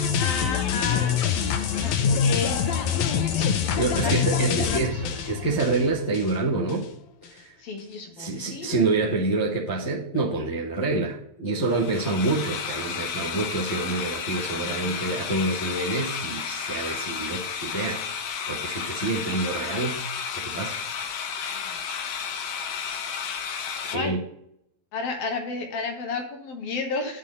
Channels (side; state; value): right; late; 12 ms